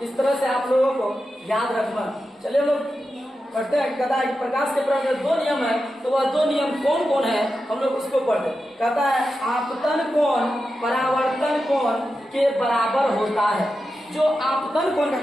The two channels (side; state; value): both; normal; correlation 0.90